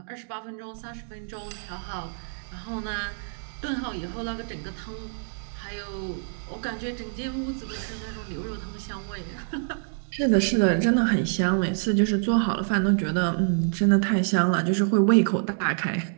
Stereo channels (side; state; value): left; silent; digital silence